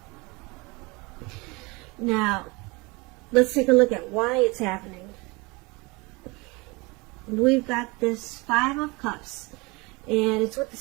Now, let's take a look at why it's happening. We've got this Five of Cups, and it's with the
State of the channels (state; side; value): quieter; left; 26.0 dB